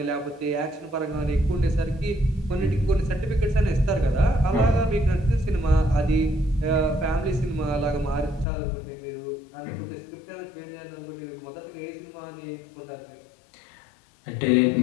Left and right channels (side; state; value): right; drops out; at 8.5 s